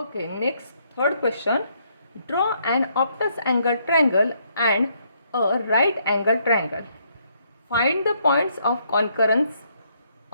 next third question. Draw an obtuse angle triangle and a right angle triangle. Find the points of concurrence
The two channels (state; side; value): inverted; both; correlation -0.72